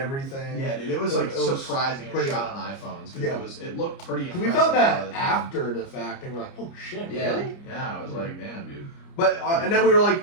Yeah, dude, it was It- like it was surprising and pretty- shot on iPhones because Yeah. it looked pretty 'Cause impressive. we found a lot that of the time. after the fact, and we're like, oh shit, Yeah, really? yeah, I was like, damn, dude. But and then we were like,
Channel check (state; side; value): late; right; 29 ms